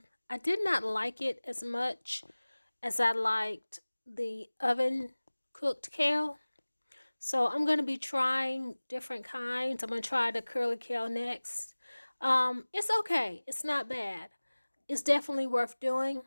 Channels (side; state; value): both; inverted; correlation -1.00